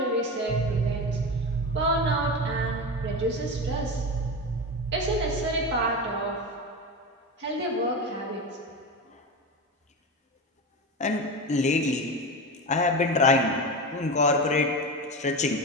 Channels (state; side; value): normal; both; correlation 0.22